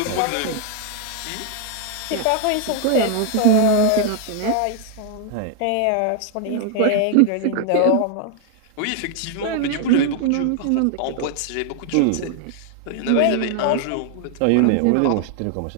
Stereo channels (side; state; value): both; different; correlation 0.00